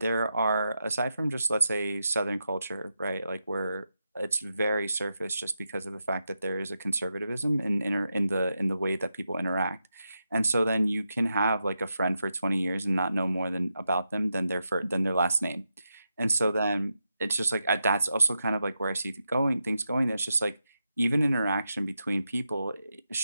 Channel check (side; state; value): both; inverted; correlation -0.87